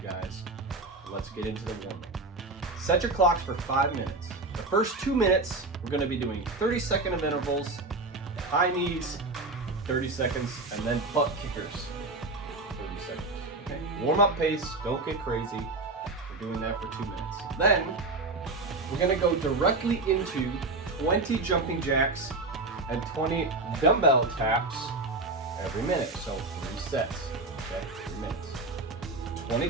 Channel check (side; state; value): left; quieter; 3.2 dB